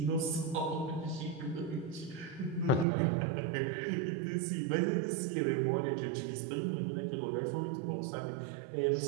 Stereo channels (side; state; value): left; drops out; at 2.9 s